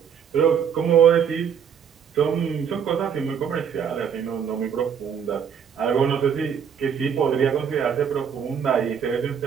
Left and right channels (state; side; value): quieter; left; 7.6 dB